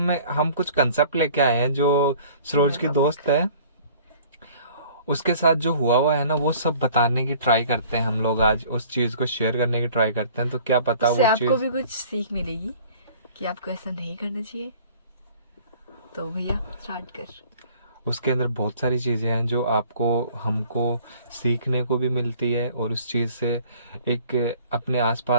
कुछ कंसेप्ट लेके आए हैं जो सरोज की दोस्त है, उसके साथ जो हुआ है ना, वो सब बताने की ट्राई करते हैं हम लोग। आज उस चीज को शेयर करने की ट्राई करते हैं, तो क्या पता वो आपको चीज भी कुछ सीख मिलेगी कि आपको ऐसा नहीं करना चाहिए। तो भैया स्टार्ट कर। उसके अंदर बहुत सारी चीज़ें हैं जो आपको हमको सीखने को भी मिलती है, और उस चीज़ से एक अपने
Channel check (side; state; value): both; inverted; correlation -0.50